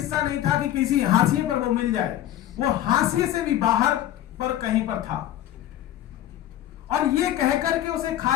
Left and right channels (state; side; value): quieter; right; 12.7 dB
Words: नहीं था कि किसी हाशिए पर वो मिल जाए, वो हाशिए से भी बाहर पर कहीं पर था। और ये कहकर के उसे